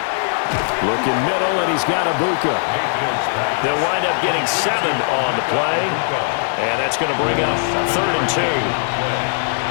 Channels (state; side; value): silent; right; digital silence